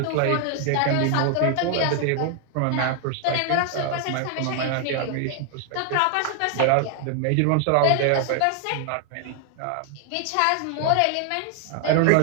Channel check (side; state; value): both; different; correlation 0.00